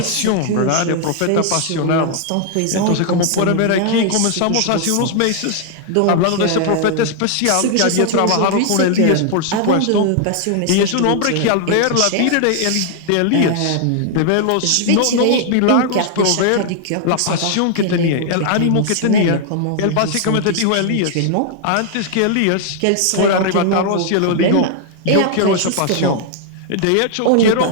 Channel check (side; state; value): both; different; correlation 0.00